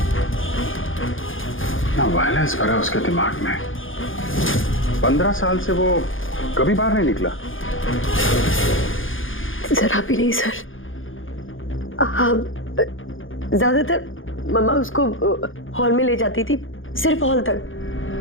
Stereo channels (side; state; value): right; late; 0.58 ms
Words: ना वायलेंस भरा उसके दिमाग में। 15 साल से वो कभी बाहर नहीं निकला। जरा भी नहीं सर। हाँ, ज्यादातर मम्मा उसको हॉल में ले जाती थी, सिर्फ हॉल